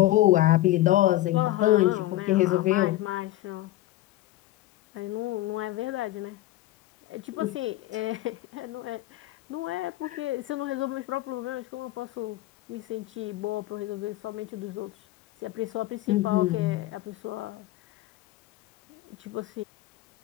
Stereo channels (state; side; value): quieter; right; 16.1 dB